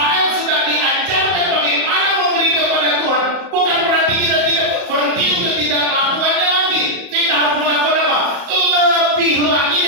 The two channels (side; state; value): left; late; 34 ms